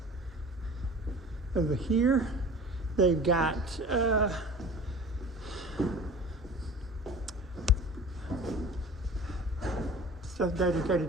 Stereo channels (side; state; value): both; normal; correlation 0.41